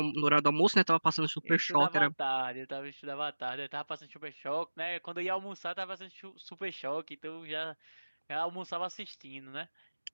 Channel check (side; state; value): both; inverted; correlation -1.00